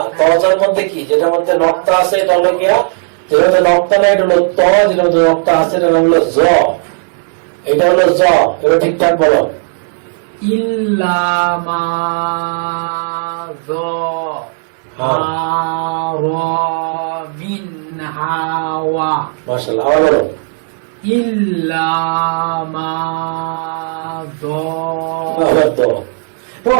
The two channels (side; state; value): left; silent; 61 dB below the other